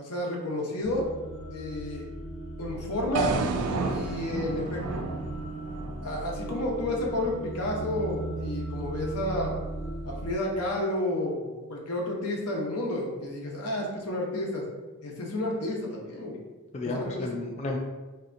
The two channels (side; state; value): both; normal; correlation 0.25